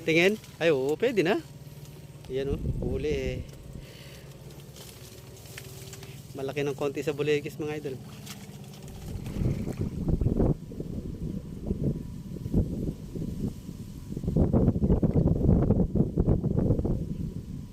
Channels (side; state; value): both; identical; correlation 1.00